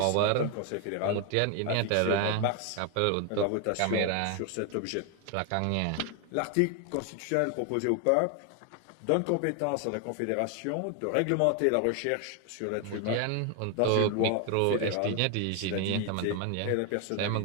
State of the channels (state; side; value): different; both; correlation 0.01